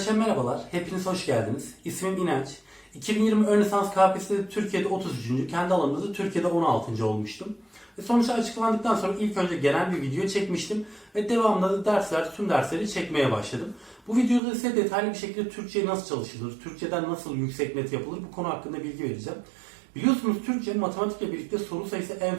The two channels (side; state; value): left; drops out; at 14.4 s